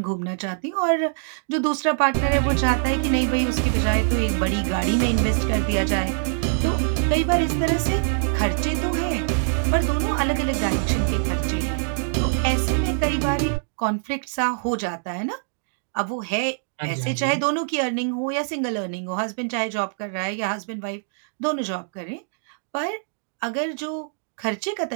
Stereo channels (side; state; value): left; silent; digital silence